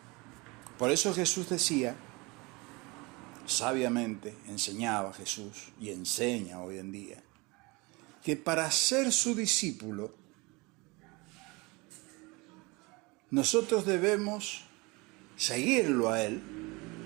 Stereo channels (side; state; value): left; quieter; 25.7 dB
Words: Por eso Jesús decía, sabiamente enseñaba Jesús y enseña hoy en día, que para ser su discípulo, nosotros debemos seguirlo a Él,